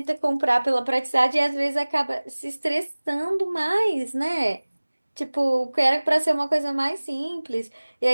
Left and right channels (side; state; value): both; inverted; correlation -1.00